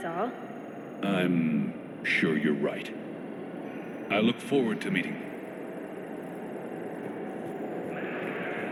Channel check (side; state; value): both; identical; correlation 1.00